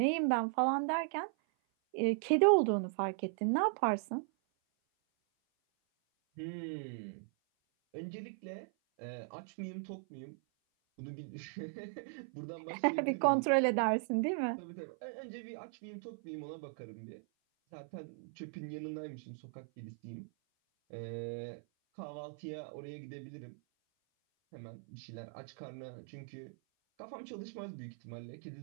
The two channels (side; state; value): left; silent; 52 dB below the other